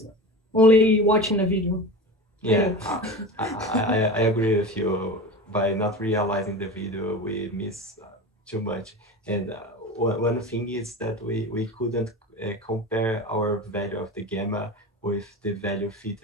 only watching a video. Yeah, I agree with you. By not realizing the video, we miss too much. And one thing is that we couldn't compare our value of the gamma with the value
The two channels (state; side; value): normal; both; correlation 0.29